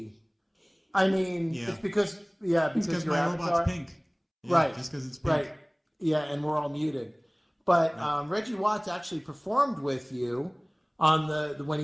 I mean, it's because Because your my avatar. robot's pink. Yeah, Right. Just because it's pink. Right. Yeah, and we're all muted. But Reggie Watts actually performed with you on the when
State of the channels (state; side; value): identical; both; correlation 1.00